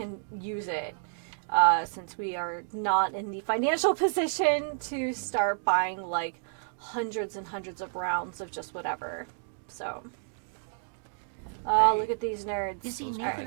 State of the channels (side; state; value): left; silent; digital silence